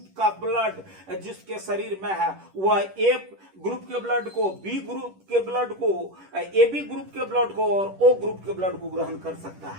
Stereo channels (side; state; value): left; late; 10 ms